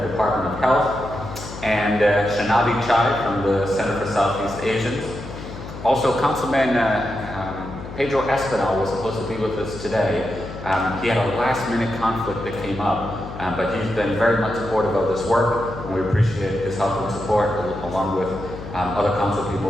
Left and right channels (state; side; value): noise; left; hum, 11 dB below the sound